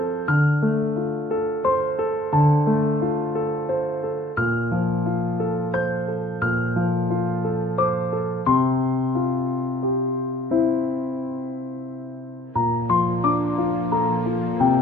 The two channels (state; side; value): normal; both; correlation 0.59